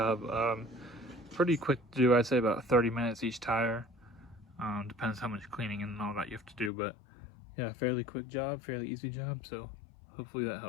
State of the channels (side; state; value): right; drops out; at 6.7 s